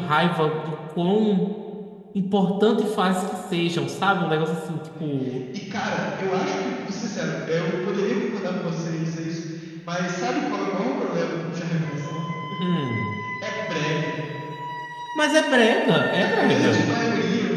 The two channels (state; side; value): identical; both; correlation 1.00